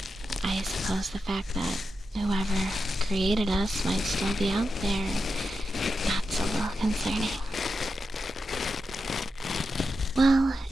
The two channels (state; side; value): normal; both; correlation 0.89